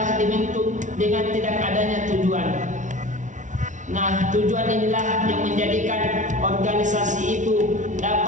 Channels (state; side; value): late; left; 0.37 ms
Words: dibentuk dengan tidak adanya tujuan. Nah, tujuan inilah yang menjadikan organisasi itu